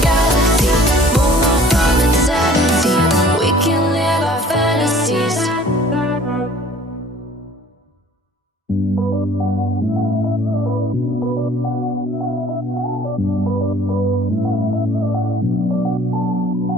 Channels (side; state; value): both; normal; correlation 0.52